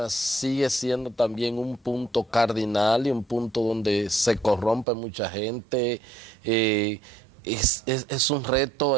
sigue siendo también un punto cardinal y un punto donde se corrompe mucha gente. Es un reto,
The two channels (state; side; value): drops out; left; at 4.9 s